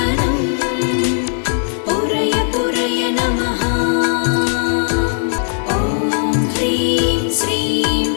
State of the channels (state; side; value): silent; right; 64 dB below the other